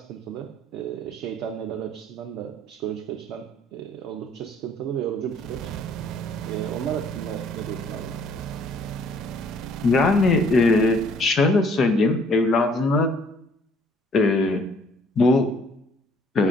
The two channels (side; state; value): both; normal; correlation 0.60